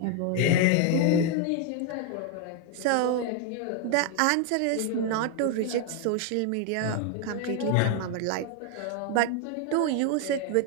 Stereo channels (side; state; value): both; different; correlation 0.00